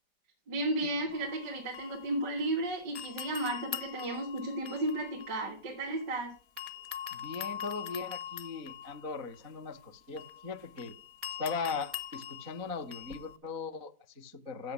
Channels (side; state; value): left; late; 4.3 ms